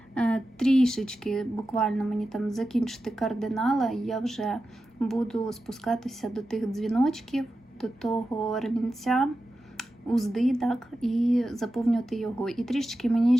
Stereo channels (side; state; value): both; normal; correlation 0.92